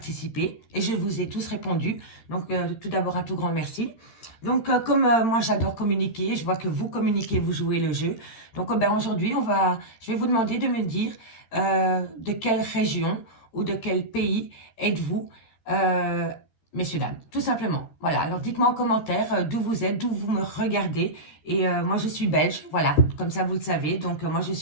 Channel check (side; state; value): right; late; 13 ms